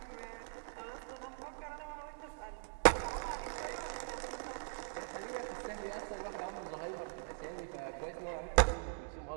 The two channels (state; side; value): silent; left; digital silence